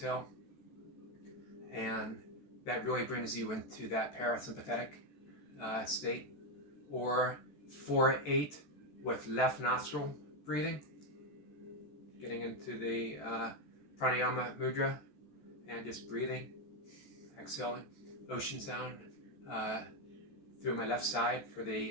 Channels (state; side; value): late; right; 14 ms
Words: and that really brings you into that parasympathetic state. Or 4-8 with left nostril breathing, getting into the pranayama mudra and just breathing, exhaling, ocean sound through my left side for